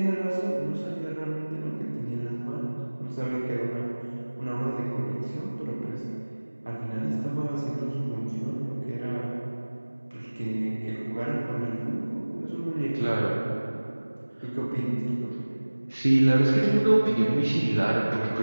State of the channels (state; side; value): inverted; both; correlation -1.00